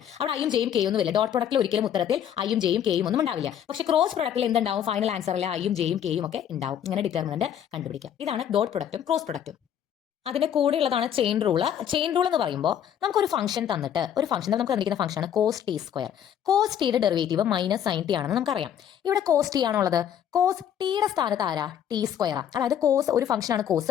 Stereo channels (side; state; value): right; quieter; 9.6 dB